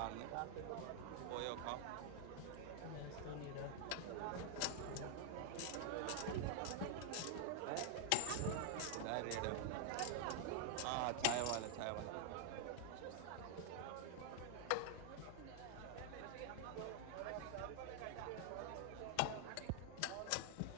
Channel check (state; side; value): different; both; correlation 0.00